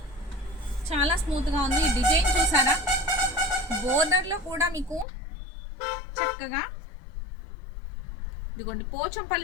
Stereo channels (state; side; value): drops out; right; at 5.1 s